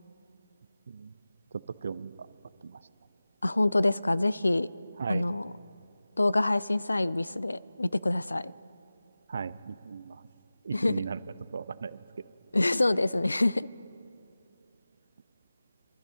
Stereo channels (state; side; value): inverted; both; correlation -0.97